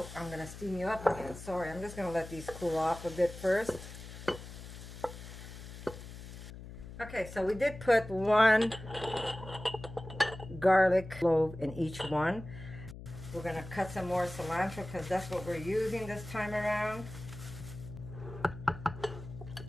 I'm going to steam you up again. Sorry, I'm just going to let these cool off a bit first. Okay, so we did put one garlic clove in each one. We're going to cut some more cilantro because that's what we're using this time around.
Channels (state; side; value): noise; left; hum, 13 dB below the sound